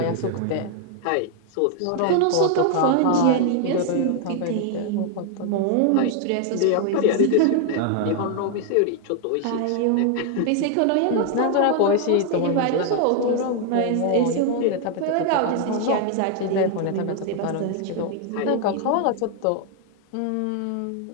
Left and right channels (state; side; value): different; both; correlation 0.00